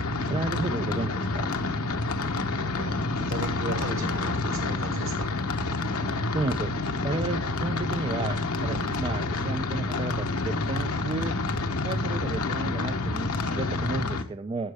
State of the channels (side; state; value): both; normal; correlation 0.49